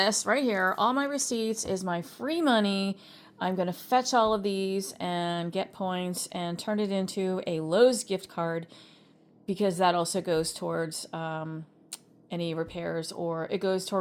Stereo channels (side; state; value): both; identical; correlation 1.00